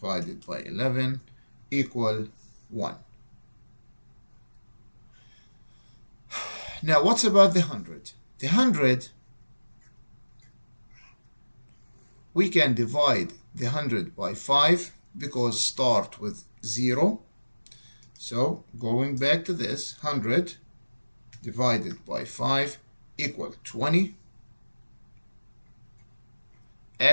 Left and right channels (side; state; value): both; inverted; correlation -1.00